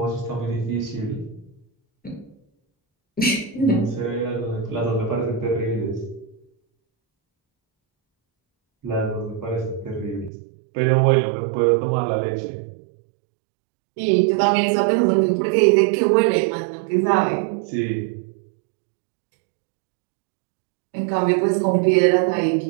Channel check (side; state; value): left; drops out; at 10.3 s